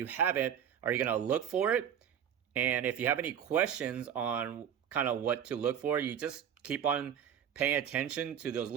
haven't, are you going to look for it? And if you have any questions on kind of what to look for, you just keep on paying attention to those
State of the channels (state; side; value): quieter; left; 8.9 dB